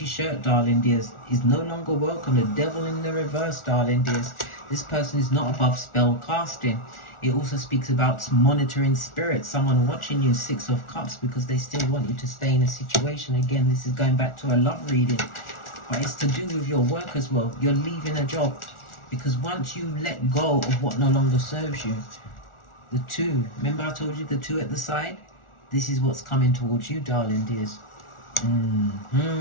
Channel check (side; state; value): right; late; 1.4 ms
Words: shirt, darling dears, is no longer welcome. The devil in the reverse, darling dears. This person is not above spell casting. It also speaks about monitoring spirits, someone watching you, 6 of Cups, because they still want you to stay in a situation. Again, this is going back to a love reading, but it's to do with your work as well. You're leaving a job because once you let go of what no longer serves you, the 2, remember I told you the 2 at the side? This is what's coming towards you, darling dears.